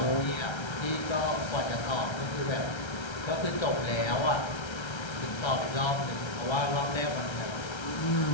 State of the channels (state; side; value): late; right; 1.3 ms